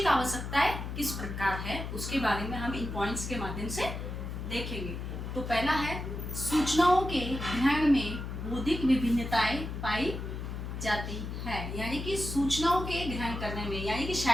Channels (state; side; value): noise; left; hum, 6 dB below the sound